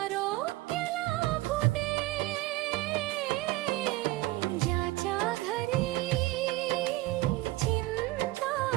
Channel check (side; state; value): left; quieter; 18.6 dB